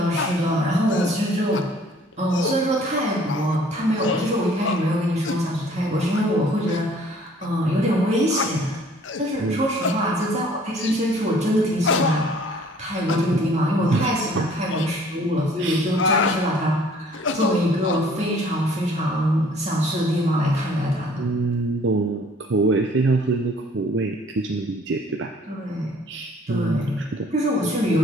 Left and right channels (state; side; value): normal; both; correlation 0.56